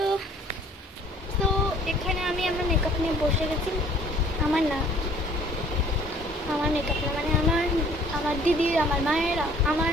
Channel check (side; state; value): both; normal; correlation 0.55